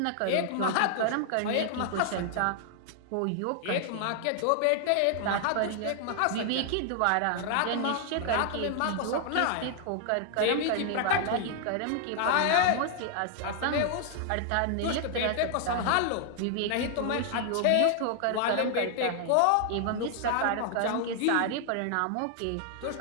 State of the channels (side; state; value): both; different; correlation 0.00